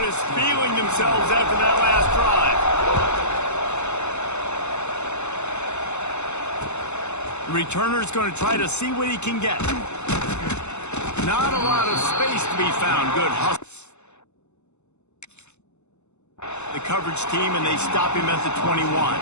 is feeling themselves after that last drive. The returner's going to try to see what he can get. Not a lot of space to be found. Good hustle. The coverage team, and they stop him at the 21.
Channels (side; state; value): right; late; 0.82 ms